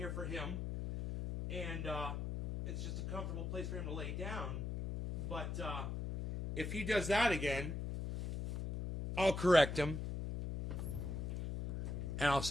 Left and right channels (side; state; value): left; noise; hum, 3 dB below the sound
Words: for him, and it's just a comfortable place for him to lay down. But if he does that again, I'll correct him, and